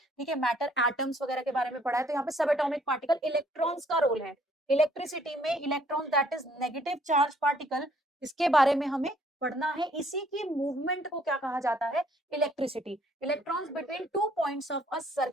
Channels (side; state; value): both; normal; correlation 0.63